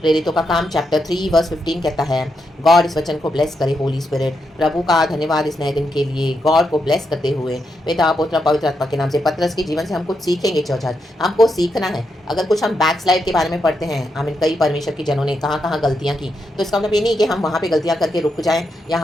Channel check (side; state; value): both; normal; correlation 0.83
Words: का काम चैप्टर 3 वर्स 15 कहता है, गॉड इस वचन को ब्लेस करे, होली स्पिरिट। प्रभु का धन्यवाद इस नए दिन के लिए, गॉड को ब्लेस करते हुए पिता पुत्र पवित्र आत्मा के नाम से। पतरस के जीवन से हम कुछ सीखेंगे चर्च, आज हमको सीखना है। अगर कुछ हम बैकस्लाइड के बारे में पढ़ते हैं, आमीन, कई परमेश्वर के जनों ने कहाँ कहाँ गलतियाँ की, तो इसका मतलब ये नहीं कि हम वहाँ पे गलतियाँ करके रुक जाएं या